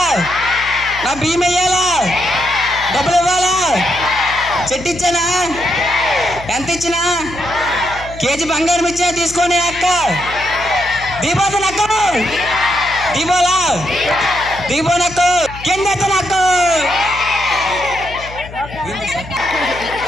నా బియ్యం వెయ్యాలా, డబ్బులు ఇవ్వాలా, చెట్టు ఇచ్చానా, ఎంత ఇచ్చినా, కేజీ బంగారం ఇచ్చా తీసుకొని అక్క. దీపోత నక్క, దీపోలా దీపో నక్కు, కింద నక్కు.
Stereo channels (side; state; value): left; noise; hum, 15 dB below the sound